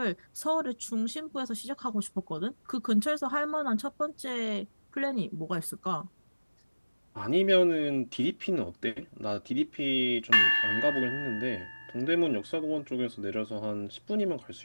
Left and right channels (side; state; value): both; inverted; correlation -1.00